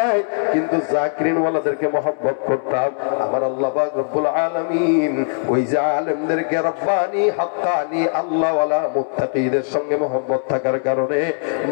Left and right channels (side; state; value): right; silent; 66 dB below the other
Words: কিন্তু জাকিরিন ওয়ালাদেরকে মহব্বত করতাম। আমার আল্লাহ পাক রব্বুল আলামিন ওই যে আলেমদেরকে রব্বানি হাক্কানি আল্লাহওয়ালা মুত্তাকিদের সঙ্গে মহব্বত থাকার কারণে